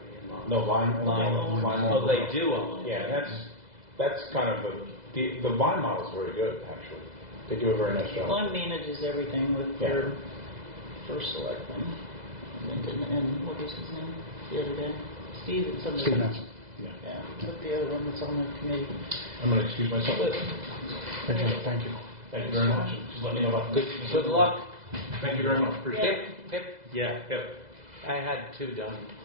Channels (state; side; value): late; left; 2.0 ms